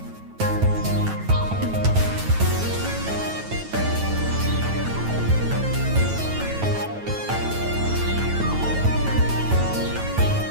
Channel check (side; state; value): left; late; 9.2 ms